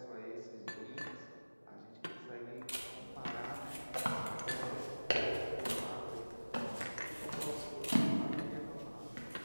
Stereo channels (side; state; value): both; inverted; correlation -1.00